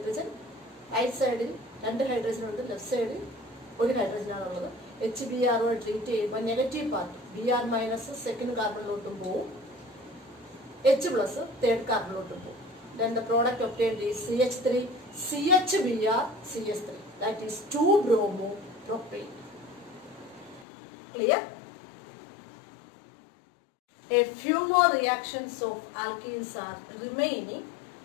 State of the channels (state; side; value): drops out; right; at 20.7 s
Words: right സൈഡിൽ രണ്ട് hydrogen ഉണ്ട്, left സൈഡിൽ ഒരു ഹൈഡ്രജനാണുള്ളത്. HBr treat ചെയ്യുമ്പോൾ negative part Br minus second കാർബണിലോട്ടും പോവും, H പ്ലസ് തേർഡ് കാർബണിലോട്ടും പോവും. Then the product obtained is CH3 CHBr CH3, that is 2-bromopropane. Clear? A few more reactions of alkenes are remaining